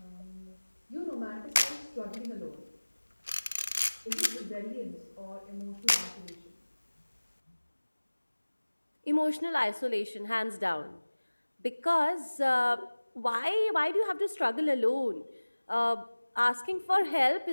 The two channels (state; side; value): inverted; both; correlation -1.00